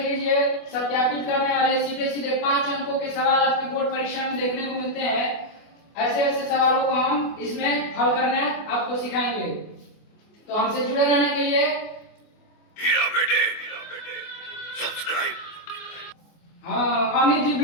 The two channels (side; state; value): right; late; 24 ms